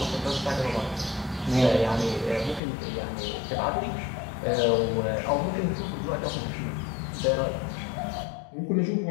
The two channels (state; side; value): drops out; right; at 2.6 s